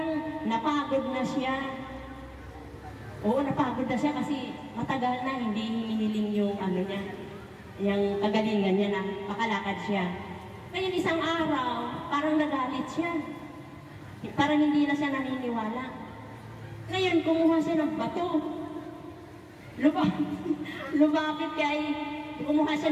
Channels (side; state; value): both; identical; correlation 1.00